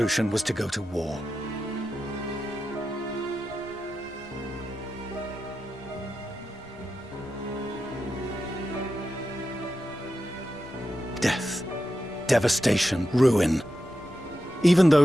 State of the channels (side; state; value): left; noise; rumble, 23 dB below the sound